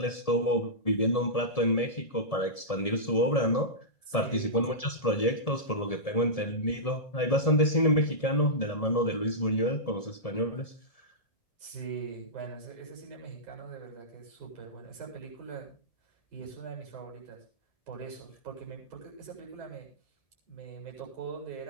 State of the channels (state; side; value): late; right; 1.7 ms